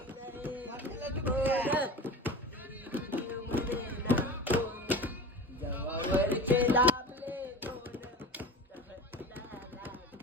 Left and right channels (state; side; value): normal; both; correlation 0.33